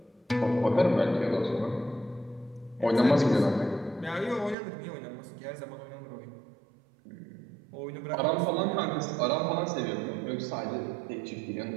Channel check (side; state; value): left; drops out; at 4.5 s